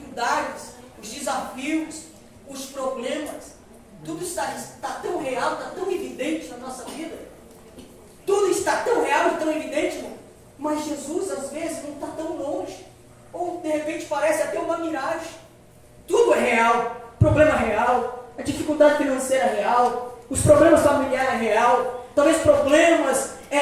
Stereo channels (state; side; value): identical; both; correlation 1.00